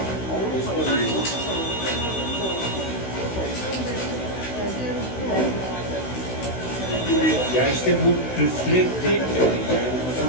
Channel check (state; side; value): late; right; 16 ms